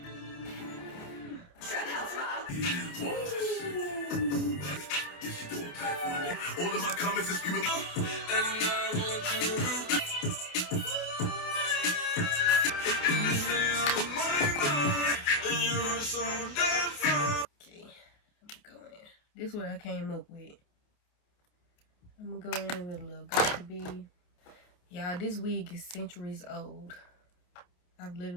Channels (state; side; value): late; right; 28 ms